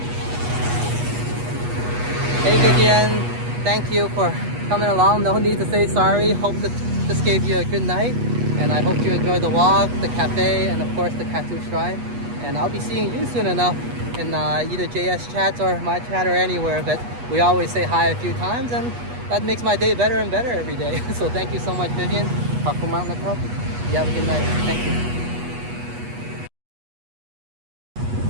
Hey Vivian, thank you for coming along. No need to say sorry. Hope this gave you a good night, and I hope you enjoyed the walk, the cafe, and of course the Kathu shrine. And I'll be seeing you soon enough in either JS chats or my chat or anywhere, but we always say hi a few times, and that makes my day better and better every day. So thank you so much, Vivian. Kathu Mountain Club. You have a good night. Thank you.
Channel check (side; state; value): left; late; 8.3 ms